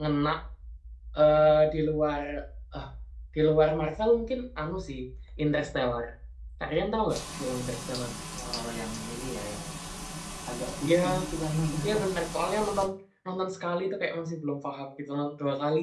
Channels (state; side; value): identical; both; correlation 1.00